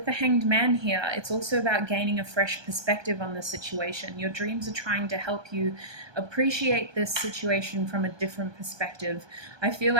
the Hanged Man here, it's also about gaining a fresh perspective on the situation. Your dreams are trying to help you appreciate this situation from a different perspective. I feel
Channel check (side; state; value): left; late; 1.2 ms